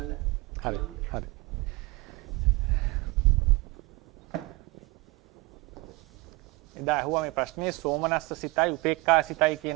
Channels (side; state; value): left; quieter; 24.7 dB